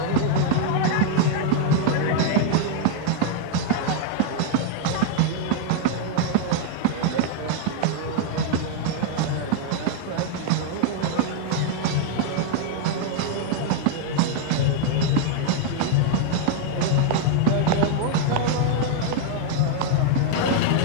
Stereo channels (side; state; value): both; different; correlation 0.00